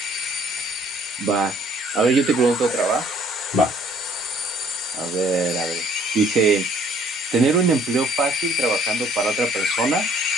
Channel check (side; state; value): both; normal; correlation 0.59